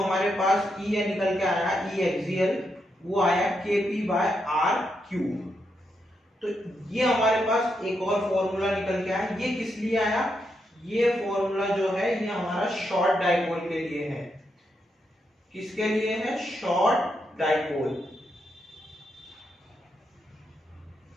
पास E है निकल के आया E एक्सियल, वो आया K P bye are cube. तो ये हमारे पास एक और फॉर्मूला निकल के आया। ये किस लिए आया, ये फॉर्मूला जो है ये हमारा शॉर्ट डाइपोल के लिए है। किसके लिए है, शॉर्ट डाइपोल।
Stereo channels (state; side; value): normal; both; correlation 0.82